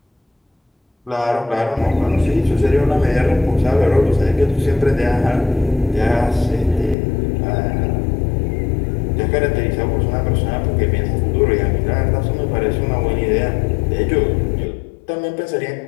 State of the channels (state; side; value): drops out; right; at 7.0 s